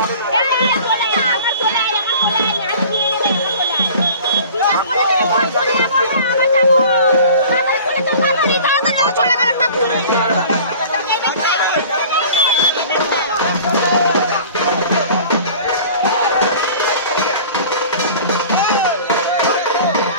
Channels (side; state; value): both; inverted; correlation -0.43